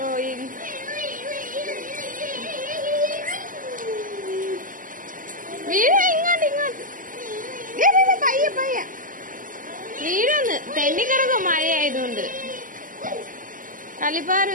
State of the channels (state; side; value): late; left; 0.39 ms